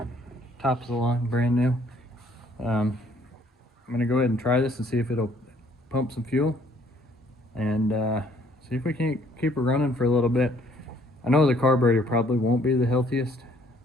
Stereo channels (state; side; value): normal; both; correlation 0.62